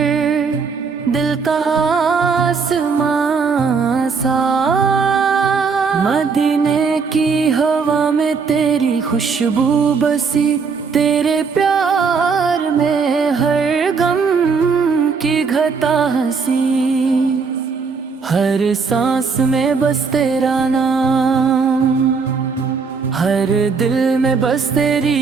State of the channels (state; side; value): quieter; left; 5.2 dB